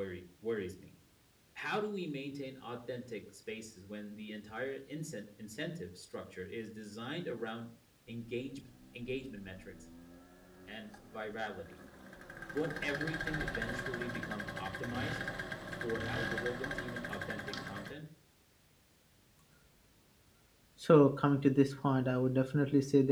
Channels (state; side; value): identical; both; correlation 1.00